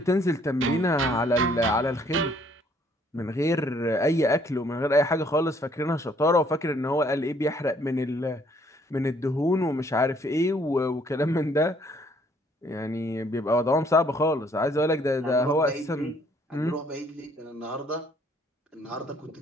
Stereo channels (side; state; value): both; normal; correlation 0.64